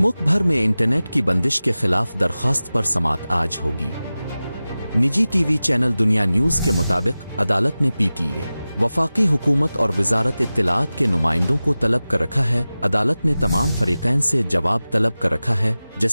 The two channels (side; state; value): both; inverted; correlation -0.97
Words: भर में इंटरनेट की बंदिश के खिलाफ दरखास्त पर समाअत आज होगी। निजी टीवी चैनल दुनिया न्यूज़ के मुताबिक अदालत ने पीटीए, वफाकी हुकूमत और वजारत इत्तलाआत के नुमाइंदों को तलब कर रखा है। अदालत ने तमाम फरीकैन से जवाब तलब कर रखा है।